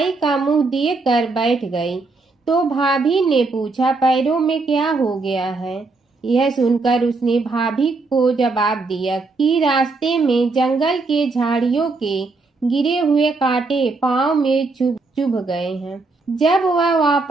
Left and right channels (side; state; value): left; quieter; 3.7 dB